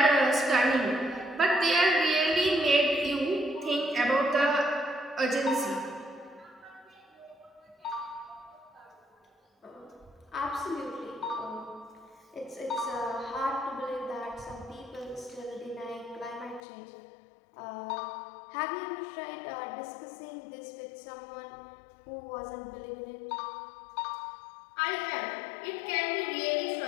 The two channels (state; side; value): drops out; right; at 16.6 s